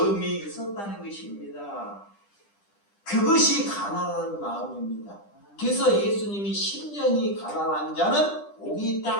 있었다는 것입니다. 그것이 가난한 마음입니다. 그래서 예수님이 심령이 가난한 자는 복이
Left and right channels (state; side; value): late; right; 10 ms